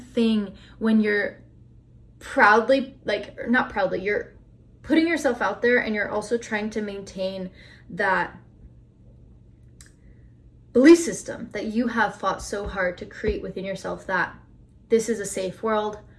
when you're proudly, like, or not proudly, you're putting yourself out there and you're also trying to maintain that belief system that you have fought so hard to create within yourself, that this is a safe world,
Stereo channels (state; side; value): identical; both; correlation 1.00